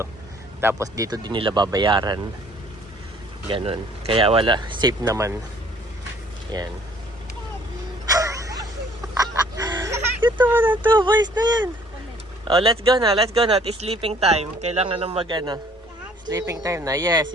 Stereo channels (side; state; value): both; normal; correlation 0.58